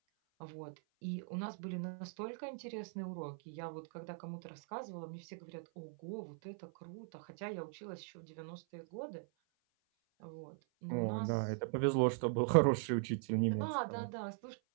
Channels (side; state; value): left; silent; 51 dB below the other